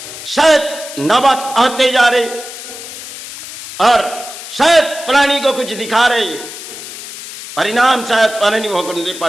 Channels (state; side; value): noise; left; hiss, 12 dB below the sound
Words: शायद नौबत आते जा रहे, और शायद प्राणी को कुछ दिखा रहे, परिणाम शायद प्राणी भोगने